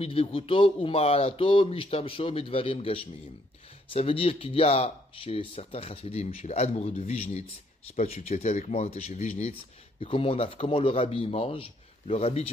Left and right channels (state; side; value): normal; both; correlation 0.69